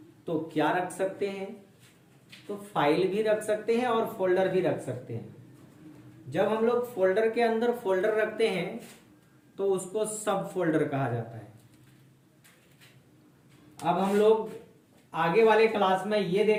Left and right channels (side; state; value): both; identical; correlation 1.00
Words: तो क्या रख सकते हैं, तो फाइल भी रख सकते हैं और फोल्डर भी रख सकते हैं। जब हम लोग फोल्डर के अंदर फोल्डर रखते हैं तो उसको सब फोल्डर कहा जाता है। अब हम लोग आगे वाले क्लास में ये